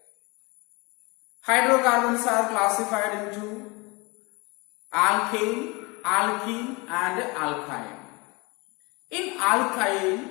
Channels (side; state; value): right; quieter; 26.7 dB